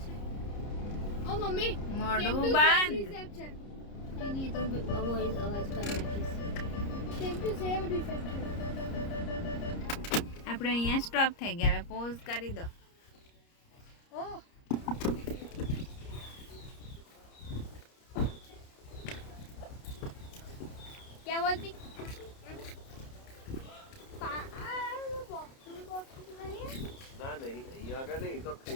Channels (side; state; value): right; late; 30 ms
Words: ઓ મમ્મી મોઢું બંધ રિસેપ્શન नहीं तो वॉइस आवाज कर रही સેમ ટુ સેમ રિસેપ્શન આપણે અહીંયા સ્ટોપ થઈ ગયા હવે પોઝ કરી દો ઓ क्या बोलती ના નહીં અહીંયા આગળ નહીં તો